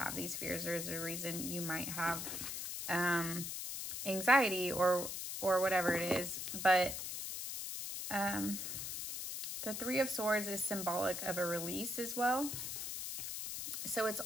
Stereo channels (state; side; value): noise; left; hiss, 5 dB below the sound